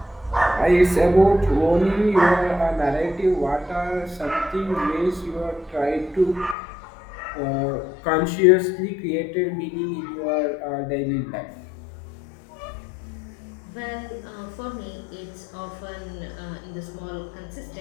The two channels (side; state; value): right; drops out; at 6.6 s